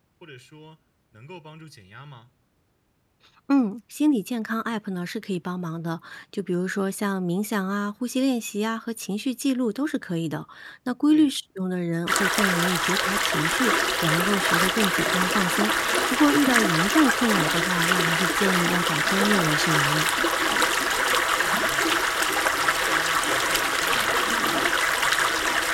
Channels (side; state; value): both; identical; correlation 1.00